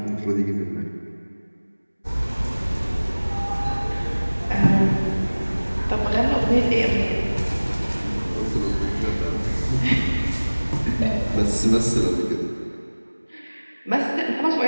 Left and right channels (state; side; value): inverted; both; correlation -1.00